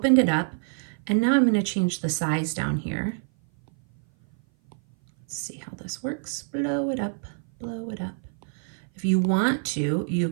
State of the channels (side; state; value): left; silent; 57 dB below the other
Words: it up, and now I'm going to change the size down here Let's see how this works. Blow it up, blow it up. If you want to, you